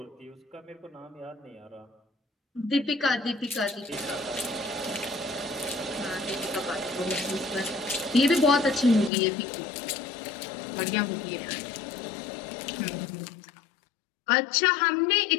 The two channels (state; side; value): drops out; right; at 9.1 s